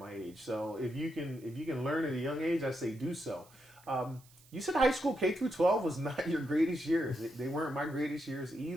age. So if you can learn at a young age, I say do so. You said high school K through 12 was not your greatest years. They weren't my greatest years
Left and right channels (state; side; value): noise; right; hiss, 26 dB below the sound